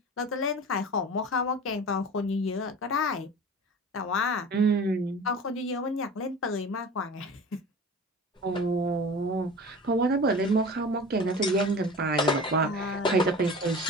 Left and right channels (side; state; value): both; normal; correlation 0.37